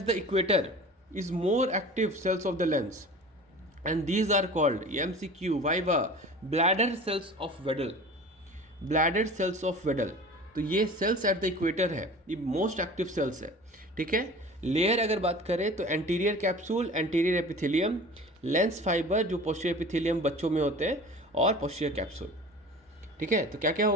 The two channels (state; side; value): normal; both; correlation 0.39